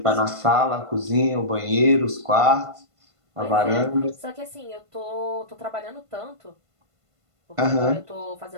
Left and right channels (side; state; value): left; late; 1.5 ms